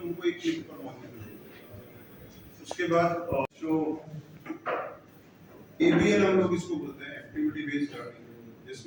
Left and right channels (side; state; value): both; identical; correlation 1.00